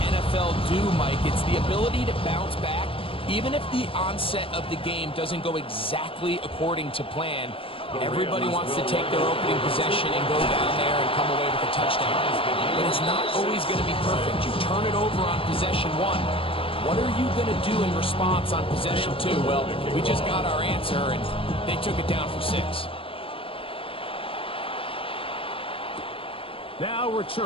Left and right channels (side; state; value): right; late; 0.26 ms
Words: NFL do, Mike. It's the ability to bounce back. Even if the onset of the game doesn't go exactly according to plan, everybody wants to take their opening possession and go down there and come away with a touchdown. But it's not always going to be perfect. You turn it over on possession 1. What are you going to do in response on possession 2? Well, we just got our answer, and they took it down for 6. Now